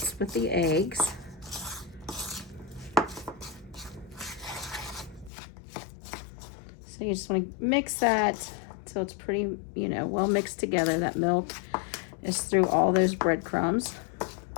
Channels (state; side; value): drops out; right; at 5.3 s